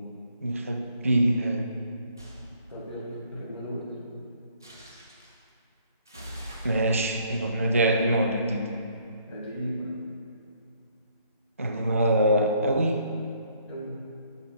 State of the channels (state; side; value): inverted; both; correlation -0.65